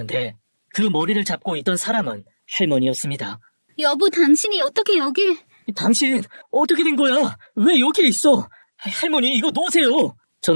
그 머리를 잡고 있던 사람은 할머니였습니다. 여보, 당신이 어떻게 여길... 당신 어떻게 된 거야? 왜 여기 있어? 할머니 이거 놓으세요.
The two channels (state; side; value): inverted; both; correlation -1.00